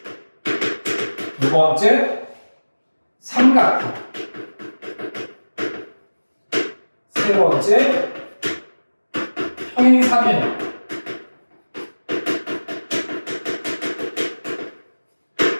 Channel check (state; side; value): inverted; both; correlation -1.00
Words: 두 번째 삼각형 세 번째 평행사변형